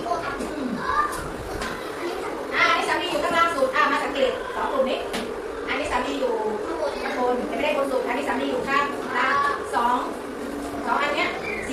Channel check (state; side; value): identical; both; correlation 1.00